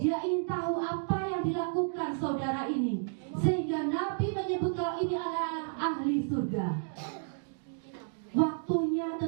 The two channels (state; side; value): silent; left; digital silence